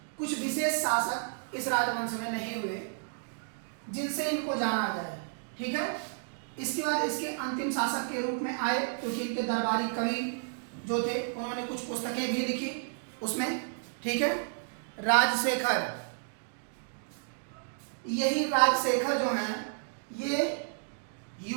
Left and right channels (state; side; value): silent; left; digital silence